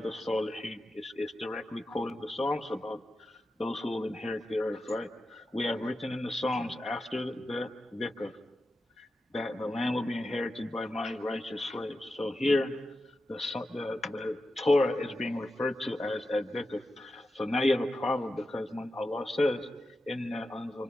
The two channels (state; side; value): normal; both; correlation 0.91